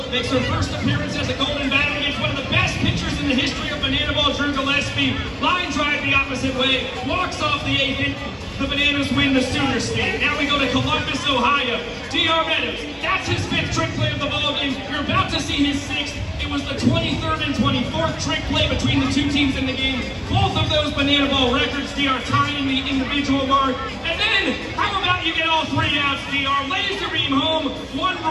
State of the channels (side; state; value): both; identical; correlation 1.00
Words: makes her first appearance as a Golden Batter against one of the best pitchers in the history of Bananaball, Drew Gillespie. Line drive the opposite way, walks off the 8th inning. The Bananas win the Sooner State. Now we go to Columbus, Ohio. D.R. Meadows, that's his 5th trick play of the ballgame. You're about to see his 6th. It was the 23rd and 24th trick play between the two teams in the game. Both of those Bananaball records, D.R. tying the individual mark. And then, how about you get all 3 outs, D.R. Laser beam home,